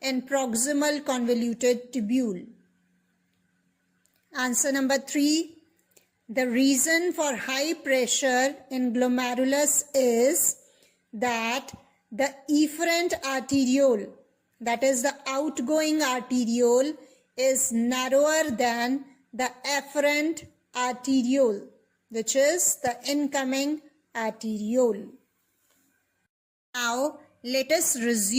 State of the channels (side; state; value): both; identical; correlation 1.00